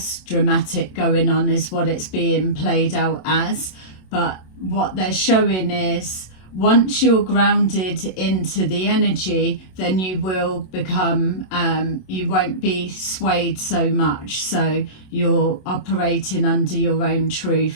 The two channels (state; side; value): late; right; 27 ms